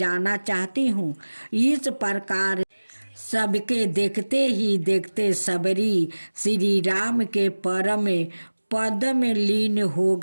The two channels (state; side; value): inverted; both; correlation -1.00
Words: चाहती हूँ। इस प्रकार सबके देखते ही देखते सबरी श्री राम के परम पद में लीन हो